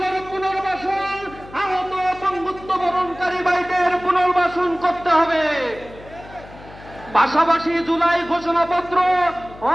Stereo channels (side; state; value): left; noise; hum, 19 dB below the sound